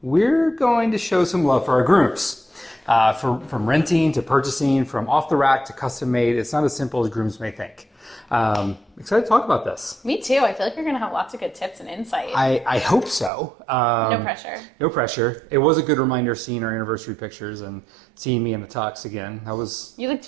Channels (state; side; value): drops out; left; at 13.3 s